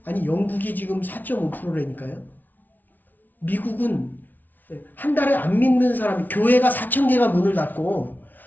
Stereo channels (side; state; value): right; late; 0.083 ms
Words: 아니 영국이 지금 4.5%라니까요. 미국은 한 달에 안 믿는 사람이, 교회가 4,000개가 문을 닫고